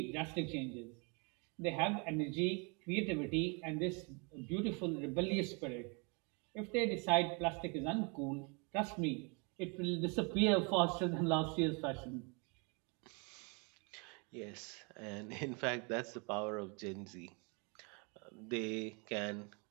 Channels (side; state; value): left; quieter; 32.6 dB